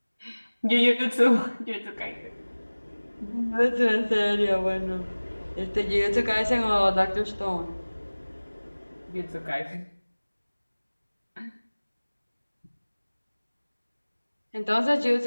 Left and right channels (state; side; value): inverted; both; correlation -1.00